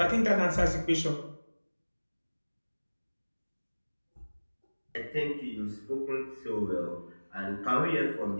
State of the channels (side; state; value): both; inverted; correlation -1.00